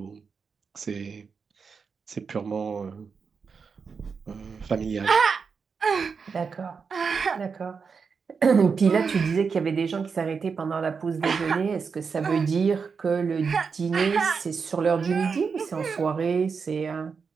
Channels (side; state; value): left; quieter; 5.5 dB